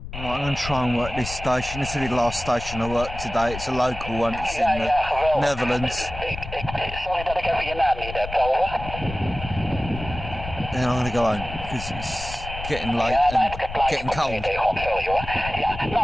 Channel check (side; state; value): left; noise; rumble, 10 dB below the sound